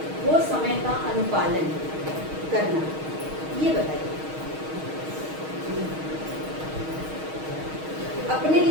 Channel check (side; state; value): left; late; 6.4 ms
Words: वो समय का अनुपालन करना, ये बताइए। अपने